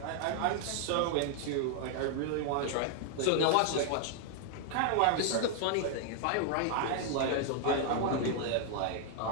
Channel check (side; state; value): both; different; correlation 0.00